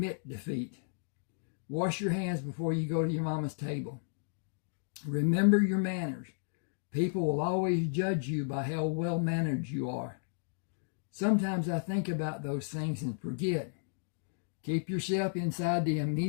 defeat. Wash your hands before you go to your mama's table. Remember your manners. People will always judge you by how well-mannered you are. Sometimes I think about those things and forget. Keep yourself inside the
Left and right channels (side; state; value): right; silent; digital silence